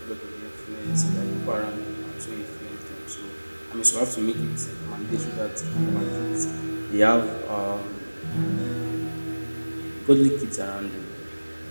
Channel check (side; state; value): both; inverted; correlation -1.00